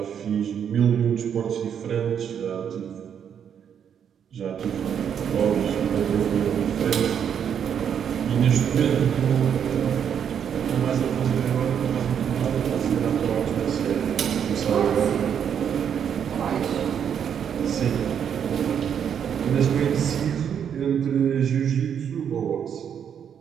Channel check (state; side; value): quieter; left; 8.2 dB